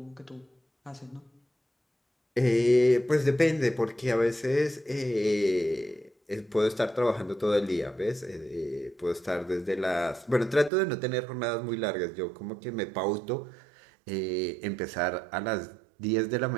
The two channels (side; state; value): left; drops out; at 10.7 s